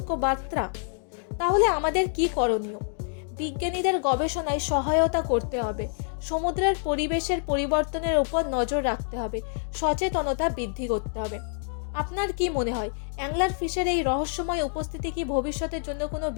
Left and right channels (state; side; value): silent; right; 60 dB below the other